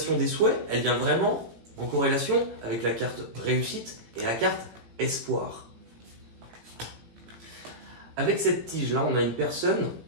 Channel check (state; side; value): late; left; 17 ms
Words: des souhaits, elle vient vraiment en corrélation avec la carte réussite et la carte espoir. Avec cette tige-là, on a une personne,